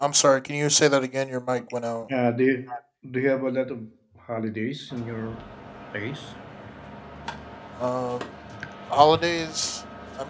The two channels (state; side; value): identical; both; correlation 1.00